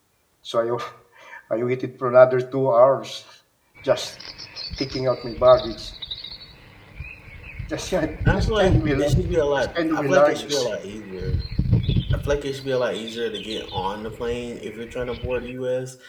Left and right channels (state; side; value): identical; both; correlation 1.00